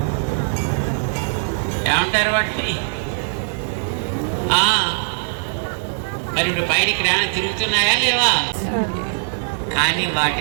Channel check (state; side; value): silent; left; digital silence